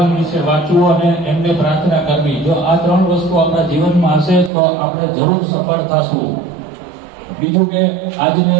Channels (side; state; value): left; drops out; at 4.5 s